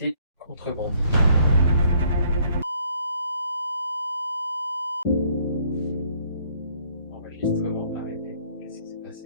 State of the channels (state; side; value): inverted; both; correlation -0.63